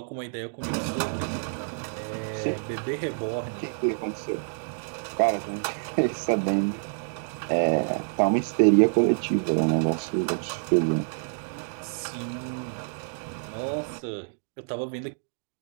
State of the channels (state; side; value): silent; left; digital silence